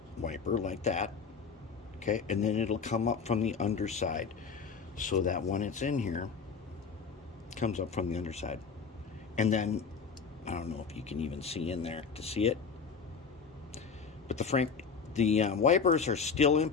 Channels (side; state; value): right; quieter; 5.7 dB